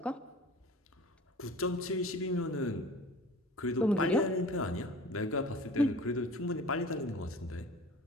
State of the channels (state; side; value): normal; both; correlation 0.42